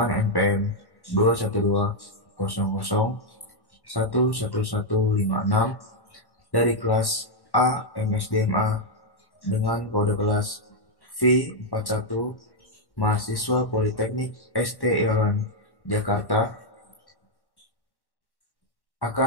NPM 21200111156 dari kelas A MSDMA dengan kode kelas V41, mahasiswa Politeknik ST Irawan Jakarta,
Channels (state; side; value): late; right; 1.1 ms